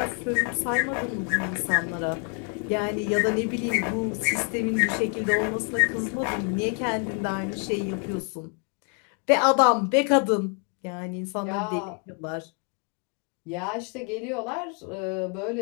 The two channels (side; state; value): right; quieter; 38.8 dB